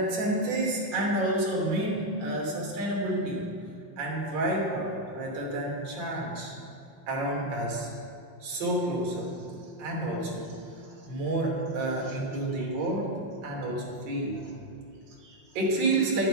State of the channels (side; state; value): left; late; 5.7 ms